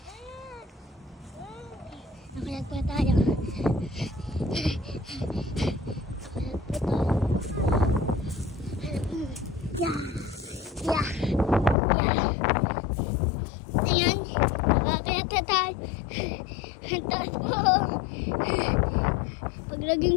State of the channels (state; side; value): drops out; right; at 11.8 s